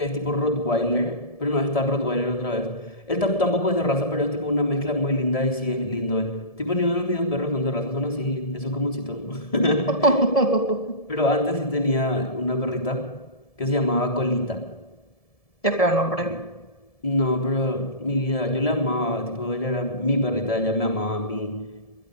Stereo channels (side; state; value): right; late; 1.7 ms